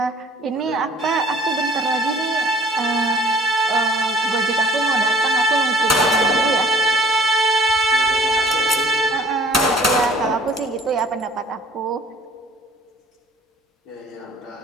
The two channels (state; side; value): normal; both; correlation 0.52